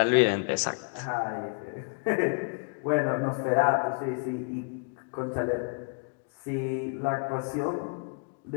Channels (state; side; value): quieter; right; 39.6 dB